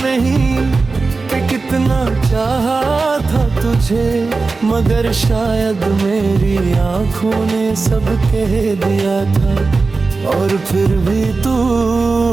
नहीं कि कितना चाहा था तुझे, मगर शायद मेरी आंखों ने सब कह दिया था और फिर भी तू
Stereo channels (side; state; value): left; quieter; 4.0 dB